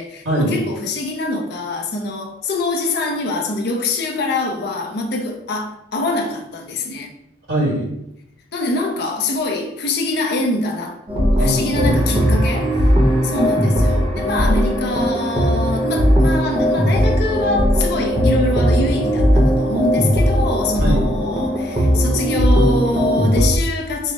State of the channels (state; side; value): normal; both; correlation 0.68